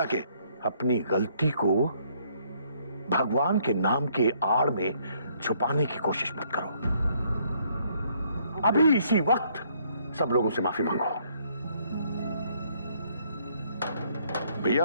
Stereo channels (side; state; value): both; inverted; correlation -0.67